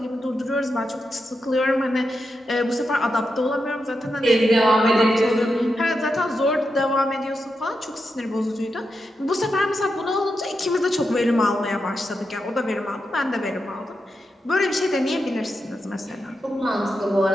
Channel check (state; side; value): normal; both; correlation 0.87